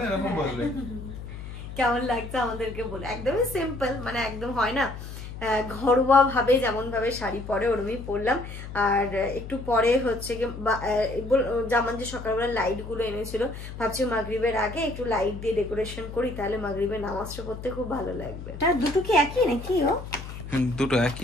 এরকম বলবে। কেমন লাগছে আমাদেরকে বলে। একদমই সিম্পল, মানে একদম হয় না ঘরোয়া ভাবে যেমন ভাবে শাড়ি পরে ওরমই পরলাম। আর একটু পরে হচ্ছে কি যেমন যে সকালবেলা লাইট গুলো এনেছিল, ভাবছি মাগরিবের আগে একটু লাইট দিয়ে ডেকোরেশন করি, তাহলে মাগরিবের নামাজটা পড়তে খুব ভালো লাগবে। আর দুটো কি একই নাকি? দুটো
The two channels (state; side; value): noise; left; hum, 10 dB below the sound